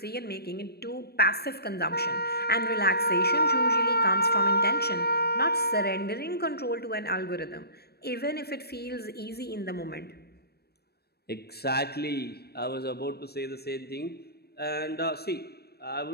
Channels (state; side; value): late; right; 0.47 ms